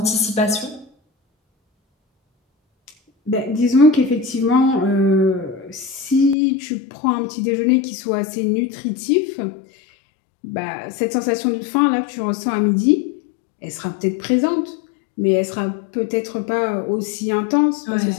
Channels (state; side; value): drops out; right; at 6.4 s